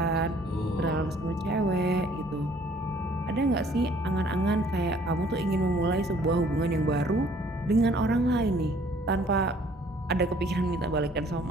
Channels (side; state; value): both; normal; correlation 0.58